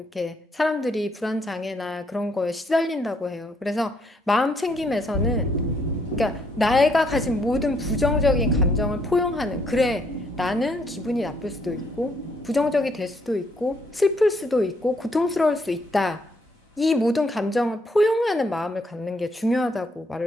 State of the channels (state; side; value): normal; both; correlation 0.71